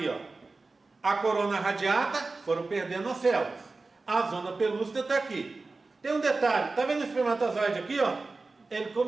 ó. A corona radiata, foram perdendo as células. A zona pelúcida está aqui. Tem um detalhe. Tá vendo o espermatozoide aqui, ó? Ele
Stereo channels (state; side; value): quieter; left; 3.7 dB